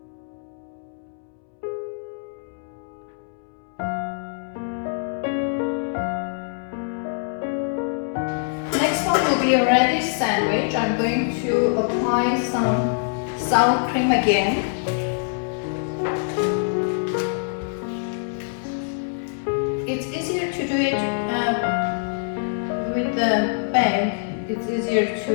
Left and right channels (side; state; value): right; silent; 62 dB below the other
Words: Next one will be a radish sandwich. I'm going to apply some sour cream again. It's easier to do it with the bag. It's easier to